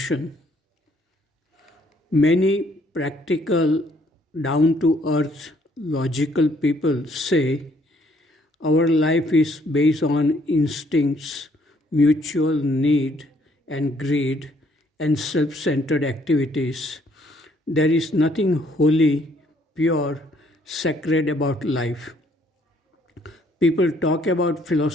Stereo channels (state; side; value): normal; both; correlation 0.66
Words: Many practical, down-to-earth, logical people say our life is based on instincts, mutual need and greed, and self-centered activities. There is nothing holy, pure, sacred about life. People talk about